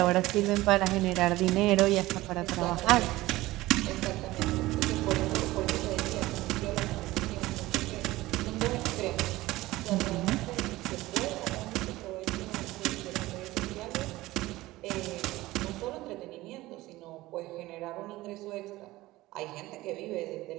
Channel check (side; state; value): left; quieter; 18.1 dB